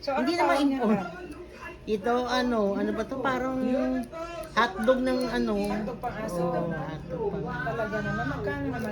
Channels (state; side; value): identical; both; correlation 1.00